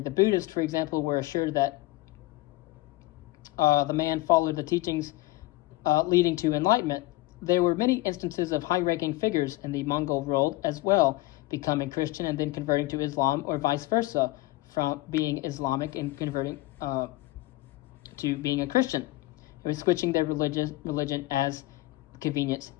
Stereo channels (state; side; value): quieter; right; 19.2 dB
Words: Buddhists, for example, were assured that the man followed the teachings leading to enlightenment. There were many instances of high-ranking figures in the Mongol world as well, becoming Christian and then converting to Islam, or vice versa, from being Islamic and converting to being a Christian. It was switching their religion as convenience